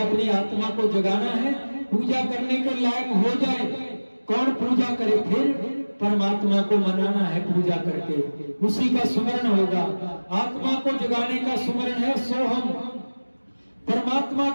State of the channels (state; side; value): inverted; both; correlation -1.00